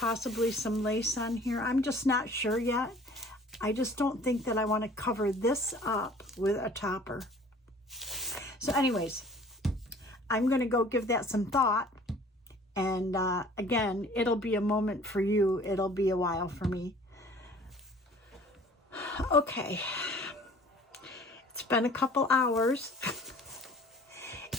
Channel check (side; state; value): both; normal; correlation 0.50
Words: some lace on here. I'm just not sure yet. I just don't think that I want to cover this up with a topper. So anyways, I'm going to go give that some thought. And again, it'll be a moment for you. It'll be a while for me. Okay. It's been a couple hours.